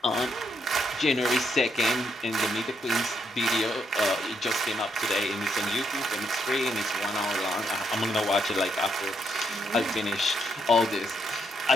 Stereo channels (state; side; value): normal; both; correlation 0.76